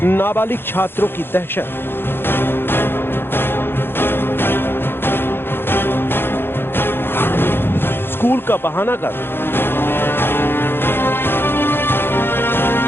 नाबालिग छात्रों की दहशत। स्कूल का बहाना कर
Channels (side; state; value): right; late; 0.10 ms